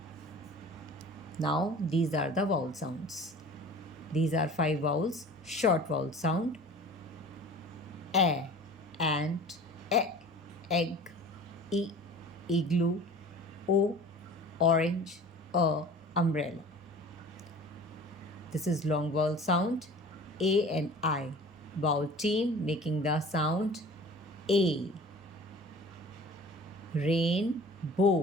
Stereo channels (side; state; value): both; normal; correlation 0.42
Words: Now these are the vowel sounds. These are 5 vowels. Short vowel sound. A, ant. Egg. E, igloo. O, orange. Umbrella. This is long vowel sound. A and I. Vowel team making the sound A.